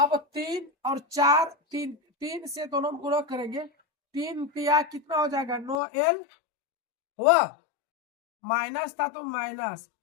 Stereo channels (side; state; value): right; drops out; at 5.8 s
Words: 3 और 4 3 से दोनों गुणा करेंगे। 3 तिया कितना हो जाएगा? 9l हुआ। माइनस था तो माइनस।